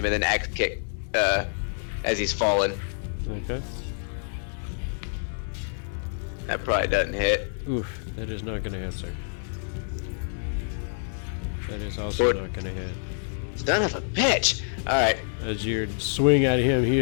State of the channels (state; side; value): silent; right; digital silence